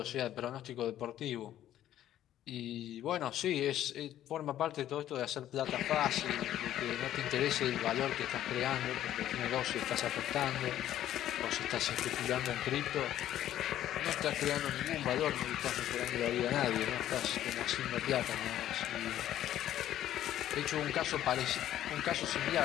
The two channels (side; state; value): right; quieter; 12.2 dB